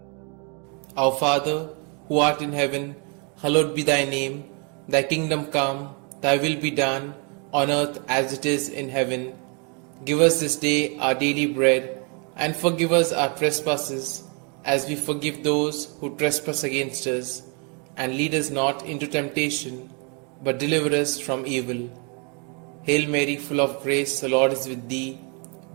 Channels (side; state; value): left; quieter; 35.5 dB